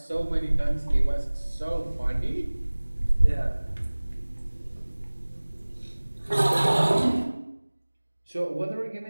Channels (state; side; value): inverted; both; correlation -1.00